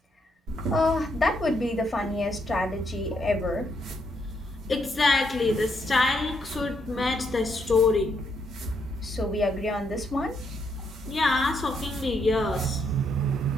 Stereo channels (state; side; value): normal; both; correlation 0.76